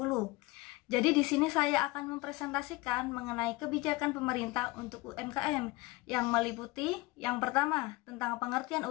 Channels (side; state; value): right; quieter; 21.3 dB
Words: Jadi di sini saya akan mempresentasikan mengenai kebijakan pemerintah untuk UMKM yang meliputi yang pertama tentang pengertian